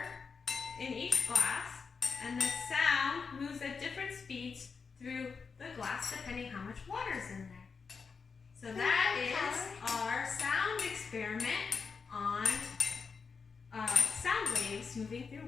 in each glass, and the sound moves at different speeds through the glass depending how much water is in there. So that is our sound experiment on sound waves moving through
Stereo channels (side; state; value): right; quieter; 5.3 dB